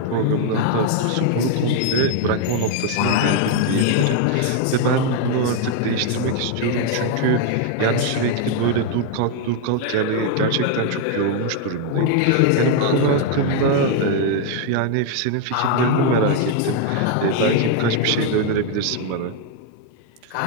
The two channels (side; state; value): both; different; correlation 0.00